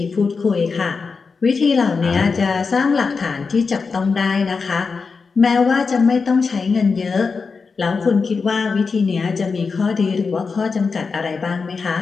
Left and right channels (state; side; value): quieter; right; 4.9 dB